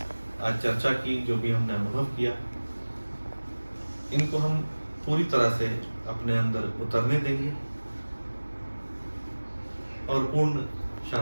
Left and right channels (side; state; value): both; inverted; correlation -1.00